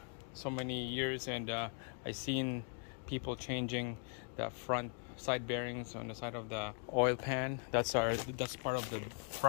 so many years, and I've seen people changing the front side bearings on the side of the oil pan. That's part of the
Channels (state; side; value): quieter; right; 38.9 dB